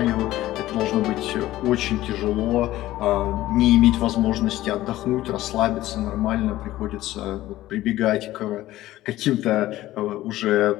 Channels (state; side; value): quieter; right; 15.5 dB